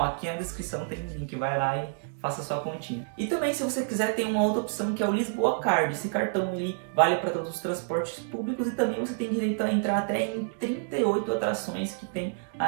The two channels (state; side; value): silent; left; digital silence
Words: aqui na descrição tem um link, vai lá e faça sua continha. E também, se você quiser, tem uma outra opção que é o Lisboa Card. Esse cartão ele vale para todos os transportes públicos e também você tem direito a entrar até em 38 atrações que tem